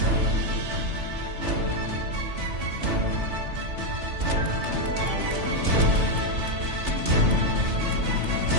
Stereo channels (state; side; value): late; left; 3.3 ms